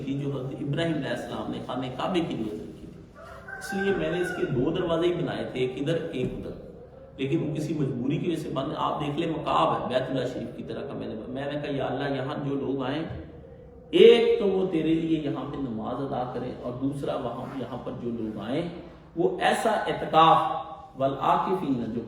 تھی جو حضرت ابراہیم علیہ السلام نے خانہ کعبے کی نیت رکھی تھی، اس لیے میں نے اس کے 2 دروازے ہی بنائے تھے، ایک ادھر ایک ادھر، لیکن وہ کسی مجبوری کی وجہ سے بند۔ آپ دیکھ لیں مقاب ہے بیت اللہ شریف کی طرح کا، میں نے کہا یا اللہ یہاں جو لوگ آئیں، ایک تو وہ تیرے لیے یہاں پہ نماز ادا کریں، اور دوسرا یہاں پر جو لوگ آئیں وہ ایسا اعتکاف والعاکفین جو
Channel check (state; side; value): identical; both; correlation 1.00